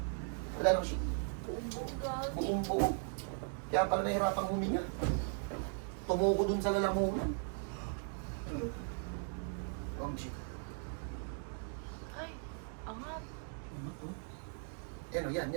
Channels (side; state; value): left; silent; 52 dB below the other